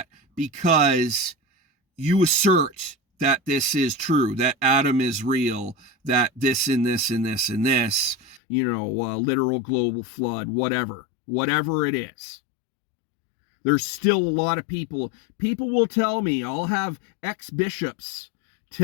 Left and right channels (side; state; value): right; drops out; at 8.4 s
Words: because you assert that this is true, that Adam is real, that this and this and this and this, literal global flood, whatever it is. There's still a lot of people will tell me, I'll have ex-bishops